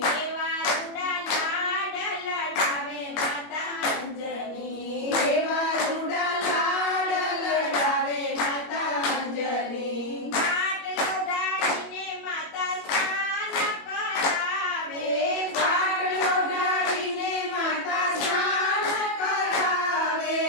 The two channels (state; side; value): late; right; 21 ms